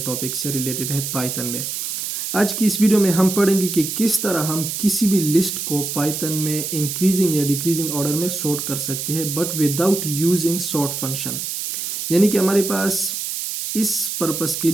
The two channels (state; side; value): noise; right; hiss, 4 dB below the sound